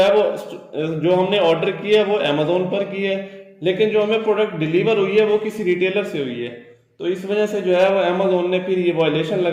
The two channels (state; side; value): identical; both; correlation 1.00